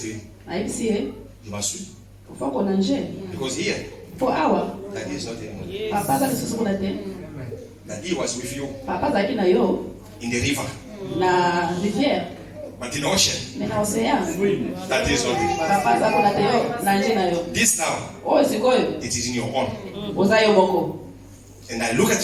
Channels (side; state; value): both; identical; correlation 1.00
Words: to him, Na hivi si you must swim ufako na nje. because here For hour. that is not anymore. Daddy was with you in the river. But in the ocean, that is not it. This now, it is in your own. And I look